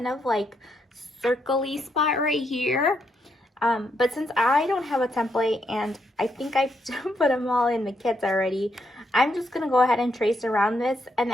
of like circle-y spot right here. But since I don't have a template and I think I've put them all in the kits already, I'm just going to go ahead and trace around this. And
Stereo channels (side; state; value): both; normal; correlation 0.78